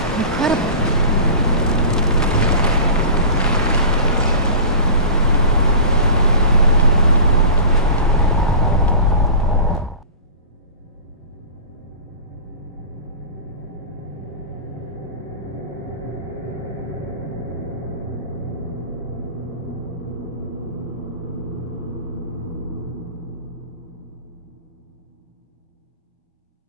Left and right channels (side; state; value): both; inverted; correlation -0.35